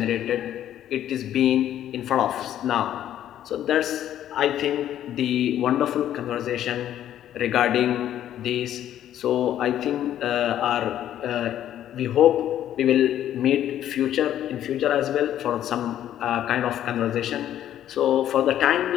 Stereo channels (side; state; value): right; quieter; 11.4 dB